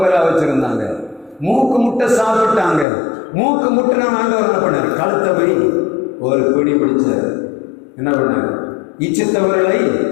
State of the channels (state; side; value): drops out; right; at 2.9 s